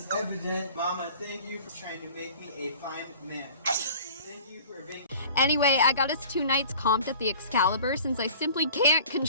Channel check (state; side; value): inverted; both; correlation -0.45